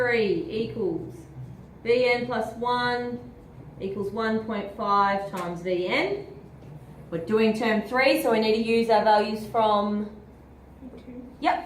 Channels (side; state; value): both; identical; correlation 1.00